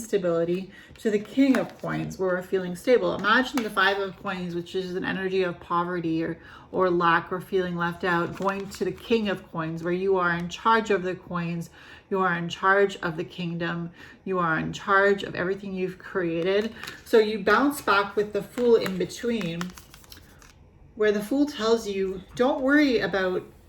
to the King of Coins, where we're feeling stable. Imagine the Five of Coins, which is an energy of poverty or lack or feeling left out, going to the King of Coins, where you are in charge of the coins, you are in charge of the kingdom, you are in charge of everything you've created. So you bounce back with the Fool in between, where the Fool tells you, don't worry about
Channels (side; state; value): both; identical; correlation 1.00